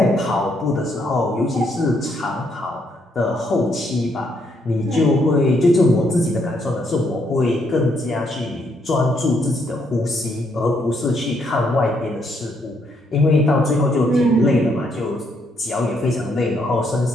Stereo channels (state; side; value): normal; both; correlation 0.73